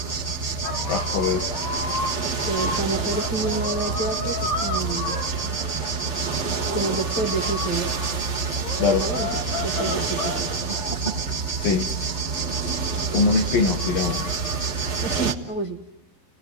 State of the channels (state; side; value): late; right; 11 ms